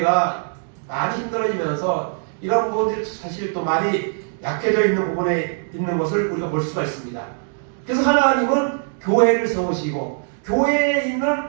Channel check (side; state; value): left; silent; digital silence